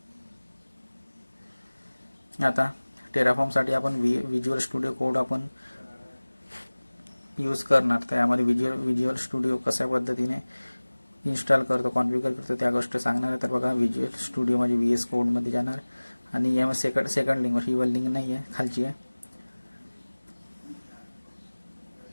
आता टेराफॉर्मसाठी आपण विज्युअल स्टुडिओ कोड आपण यूज करणार. तर यामध्ये विज्युअल स्टुडिओ कशा पद्धतीने इन्स्टॉल करतो, कॉन्फिगर करतो त्या गोष्टी सांगणार आहे. तर बघा विज्युअल स्टुडिओ म्हणजे VS कोडमध्ये जाणार आणि यामध्ये सेकंड लिंकवर, ही वर लिंक नाही आहे, खालची आहे.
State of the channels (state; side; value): inverted; both; correlation -1.00